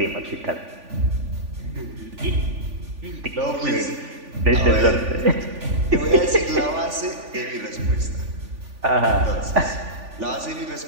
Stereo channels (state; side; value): late; left; 3.5 ms